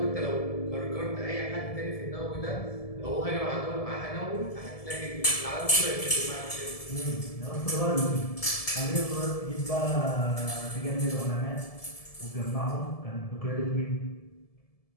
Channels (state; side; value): late; right; 1.7 ms